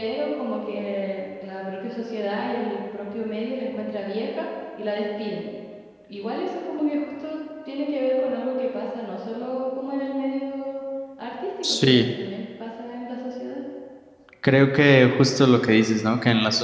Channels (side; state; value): both; identical; correlation 1.00